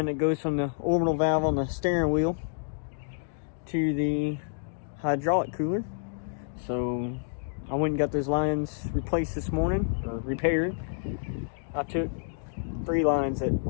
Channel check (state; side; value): silent; right; digital silence